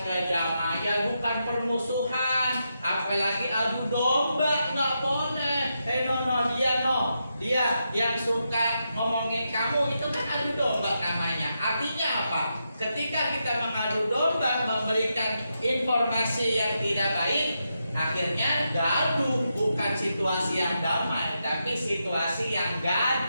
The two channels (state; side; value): inverted; both; correlation -0.85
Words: kedamaian, bukan permusuhan, apalagi adu domba. Nggak boleh. Dia yang suka ngomongin kamu, itu kan adu domba namanya. Artinya apa? Ketika kita mengadu domba, memberikan informasi yang tidak baik, akhirnya gaduh. Bukan situasi yang damai, tapi situasi yang